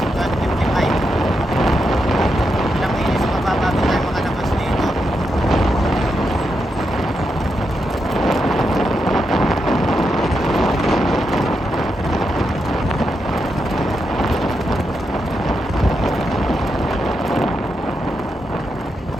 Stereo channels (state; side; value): normal; both; correlation 0.84